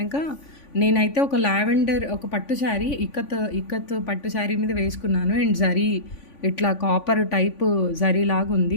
నేనైతే ఒక లావెండర్ ఒక పట్టు శారీ ఇక్కత్ పట్టు శారీ మీద వేసుకున్నాను. అండ్ జరీ ఇట్లా కాపర్ టైప్ జరీ లాగా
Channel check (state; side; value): late; right; 3.5 ms